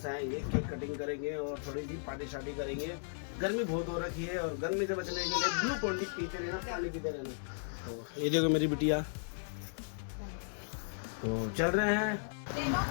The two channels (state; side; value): silent; right; digital silence